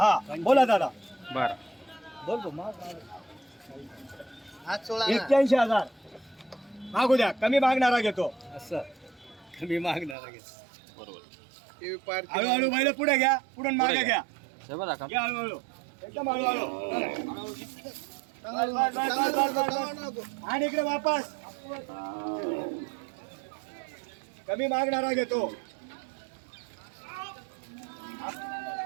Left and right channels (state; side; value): drops out; left; at 10.2 s